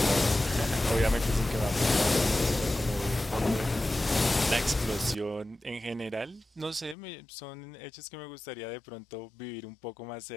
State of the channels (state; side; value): drops out; right; at 7.0 s